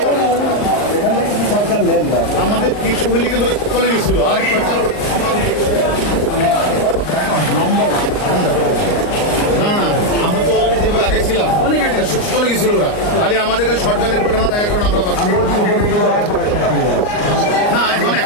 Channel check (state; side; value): late; right; 39 ms